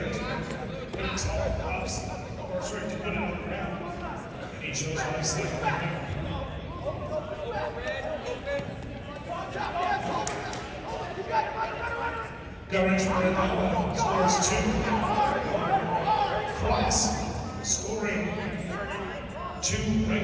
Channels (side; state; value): both; identical; correlation 1.00